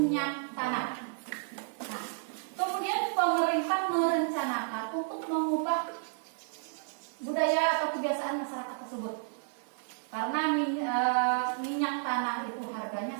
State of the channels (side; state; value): left; silent; 57 dB below the other